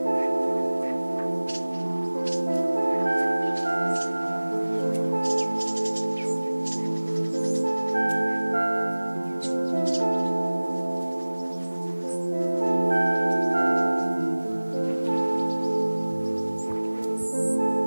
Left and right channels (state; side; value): inverted; both; correlation -1.00